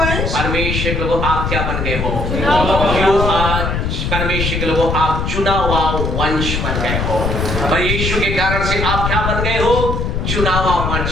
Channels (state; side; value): noise; left; rumble, 1 dB below the sound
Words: परमेश्वर के लोगों आप क्या बन गए हो? परमेश्वर के लोगों आप चुना हुआ वंश बन गए हो। और यीशु के कारण से आप क्या बन गए हो? चुना हुआ